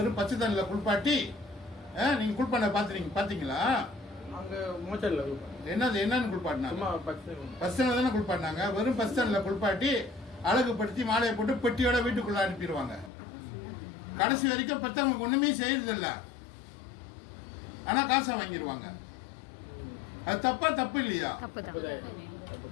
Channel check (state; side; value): drops out; right; at 13.1 s